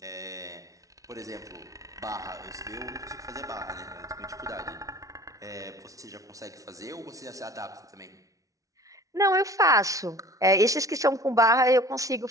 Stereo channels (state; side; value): late; left; 0.17 ms